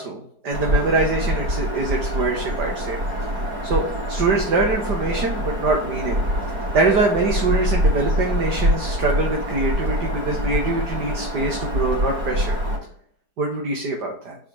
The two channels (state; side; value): late; left; 4.8 ms